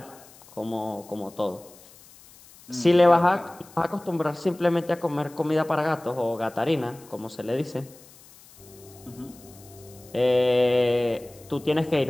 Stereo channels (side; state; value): left; noise; hiss, 23 dB below the sound